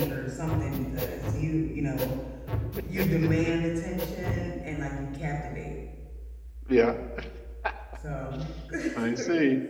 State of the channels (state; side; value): identical; both; correlation 1.00